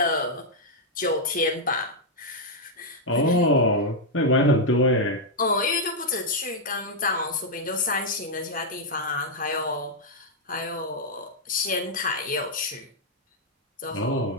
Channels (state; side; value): normal; both; correlation -0.04